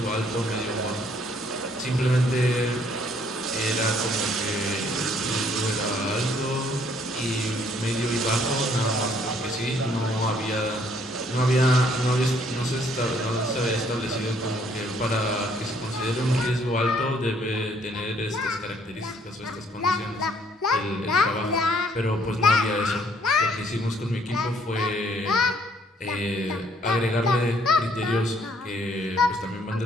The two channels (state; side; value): normal; both; correlation 0.64